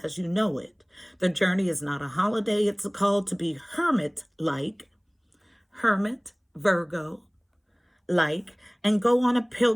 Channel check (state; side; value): identical; both; correlation 1.00